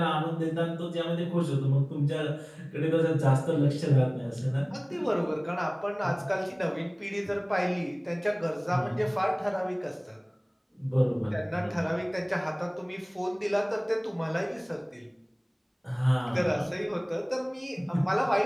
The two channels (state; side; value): identical; both; correlation 1.00